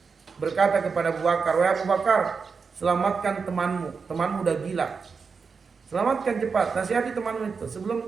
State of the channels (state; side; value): quieter; left; 5.3 dB